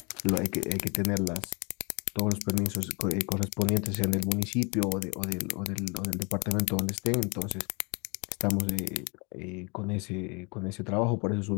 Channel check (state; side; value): quieter; right; 31.0 dB